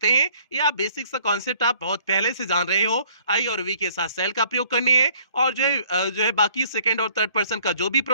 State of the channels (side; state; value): both; inverted; correlation -0.58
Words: हैं। ये आप बेसिक सा कॉन्सेप्ट आप बहुत पहले से जान रहे हो, आई और वी के साथ सेल का प्रयोग करने हैं और जो है बाकी सेकेंड और थर्ड पर्सन का जो भी